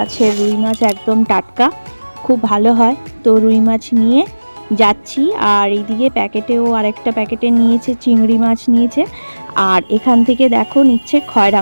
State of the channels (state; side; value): inverted; both; correlation -1.00